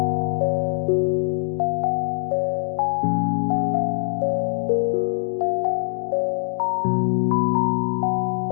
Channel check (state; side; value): silent; right; digital silence